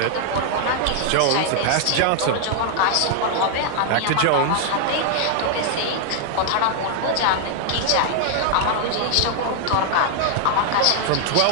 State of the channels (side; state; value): both; different; correlation 0.00